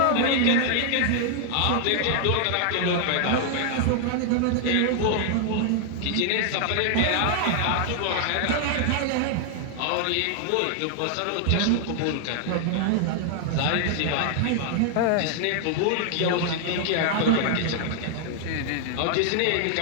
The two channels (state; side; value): different; both; correlation 0.00